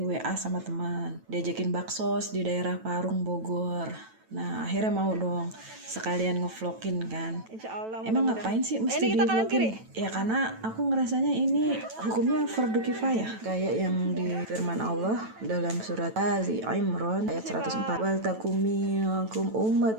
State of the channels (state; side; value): late; left; 9.1 ms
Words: sama teman, diajakin baksos di daerah Parung, Bogor. Nah, akhirnya mau dong sekalian ngevlogin kan. Insya Allah. Emang ngapain sih mesti Ini kita kanan di-vlogin? kiri. Ya karena aku ngerasanya ini hukumnya fardu kifayah. Kayak yang di firman Allah dalam surat Ali Imran ayat 104. Wal takum minkum